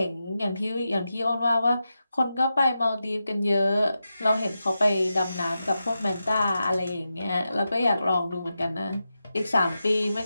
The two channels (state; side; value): inverted; both; correlation -0.90